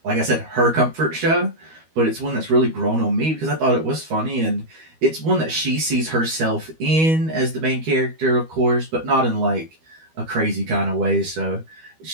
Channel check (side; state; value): left; late; 12 ms